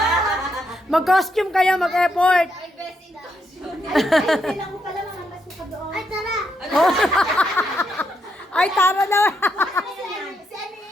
Mag-costume kayo, mag-effort. Ay, best in costume. Kailan ko pala makapasok ka doon. Ay, tara! Ay, tara daw. Si Ani,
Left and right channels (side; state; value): both; normal; correlation 0.79